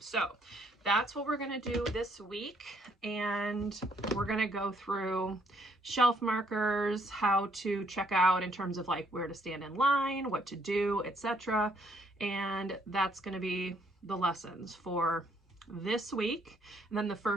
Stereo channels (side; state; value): both; normal; correlation 0.68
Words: that's what we're going to do this week. And we're going to go through shelf markers, how to check out in terms of like where to stand in line, what to do, etc. And that's going to be the lessons for this week. And then the